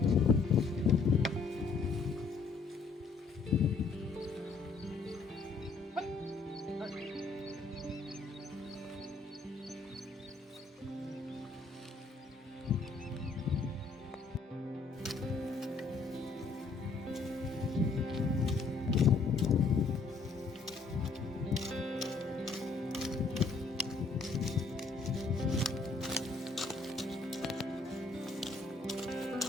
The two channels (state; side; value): quieter; right; 4.2 dB